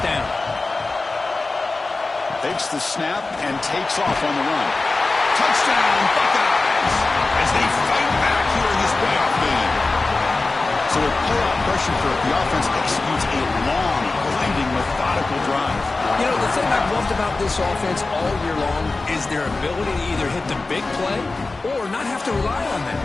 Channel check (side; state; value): right; quieter; 3.5 dB